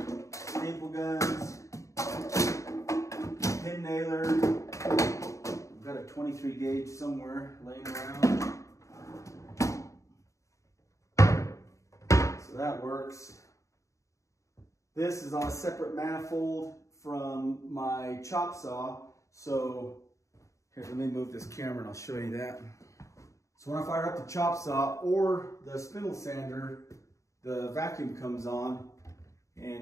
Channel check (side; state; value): right; late; 0.15 ms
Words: staple guns, pin nailer. I've got a 23 gauge somewhere laying around. So that works. This is on a separate manifold from my chop saw. So here, let me move this camera and I'll show you that. So when I fire up the chop saw or the spindle sander, the vacuum comes on,